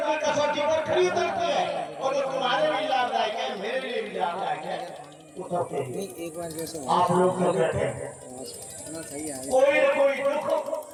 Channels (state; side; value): identical; both; correlation 1.00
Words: की कसौटी पर खड़ी उतरती है, और जो तुम्हारे लिए लाभदायक है, मेरे लिए भी लाभदायक है, उतरते हैं। नहीं एक बार जैसे आप लोग तो कहते हैं सही है कोई न कोई दुख,